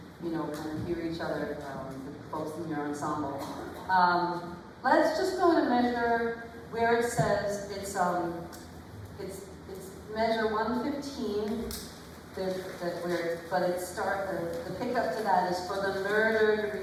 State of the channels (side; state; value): both; identical; correlation 1.00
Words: you know, kind of hear each other, the folks in your ensemble. Let's just go to measure where it says it's measure 115. But it the pickup to that is for the murdered